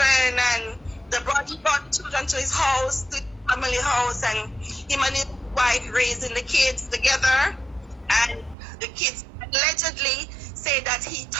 and he brought children to his house, to his family house, and him and his wife raising the kids together. And the kids allegedly say that he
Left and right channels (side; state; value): left; drops out; at 8.6 s